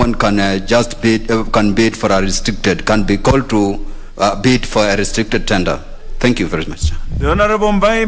can just bid, can be called to bid for a restricted tender. Thank you very much. The Honorable Mbai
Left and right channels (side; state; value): both; identical; correlation 1.00